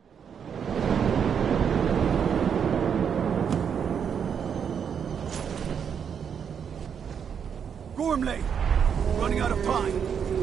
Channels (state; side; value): quieter; left; 7.5 dB